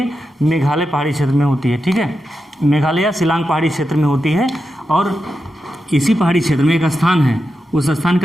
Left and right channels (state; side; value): normal; both; correlation 0.89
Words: मेघालय पहाड़ी क्षेत्र में होती है, ठीक है। मेघालय या शिलांग पहाड़ी क्षेत्र में होती है। और इसी पहाड़ी क्षेत्र में एक स्थान है, उस स्थान